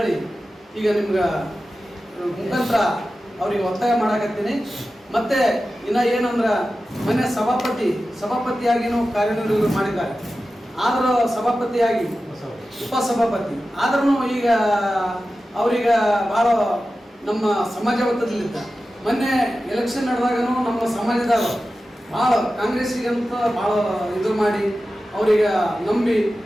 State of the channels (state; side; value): normal; both; correlation 0.94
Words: ಈಗ ನಿಮ್ಗೆ ಮುಖಾಂತರ ಅವ್ರಿಗೆ ಒತ್ತಾಯ ಮಾಡಕತ್ತೀನಿ. ಮತ್ತೆ ಇನ್ನ ಏನಂದ್ರ, ಮೊನ್ನೆ ಸಭಾಪತಿಯಾಗಿನೂ ಕಾರ್ಯನಿರ್ವಹಣೆ ಮಾಡಿದ್ದಾರೆ. ಆದರೂ ಸಭಾಪತಿಯಾಗಿ ಉಪಸಭಾಪತಿ ಆದ್ರೂ ಈಗ ಅವ್ರೀಗ ಭಾಳ ನಮ್ಮ ಸಮಾಜ ಒತ್ತಡದಲ್ಲಿದ್ದ. ಮೊನ್ನೆ ಎಲೆಕ್ಷನ್ ನಡೆದಾಗನು ನಮ್ಮ ಸಮಾಜದವರು ಭಾಳ ಕಾಂಗ್ರೆಸ್ಸಿಗಂತ ಭಾಳ ಇದು ಮಾಡಿ ಅವ್ರಿಗೆ ನಂಬಿ